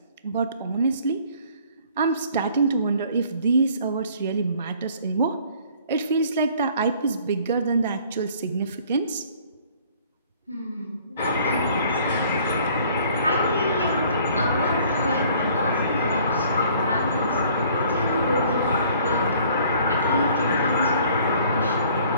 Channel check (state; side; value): inverted; both; correlation -0.56